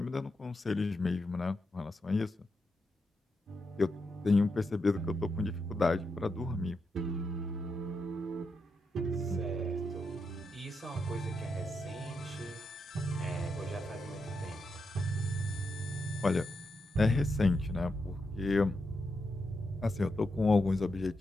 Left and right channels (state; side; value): normal; both; correlation 0.85